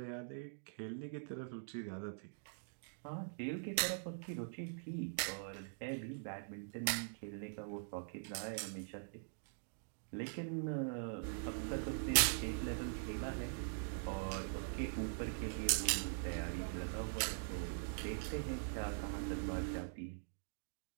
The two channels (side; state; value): left; silent; digital silence